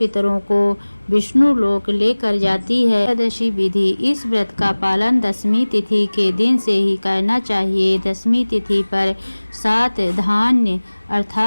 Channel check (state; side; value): inverted; both; correlation -1.00